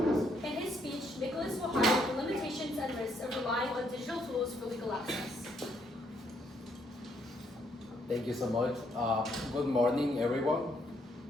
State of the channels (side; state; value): both; normal; correlation 0.72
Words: Thank you so much. Good morning, everyone.